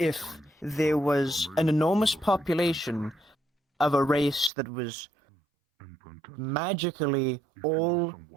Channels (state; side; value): drops out; left; at 4.5 s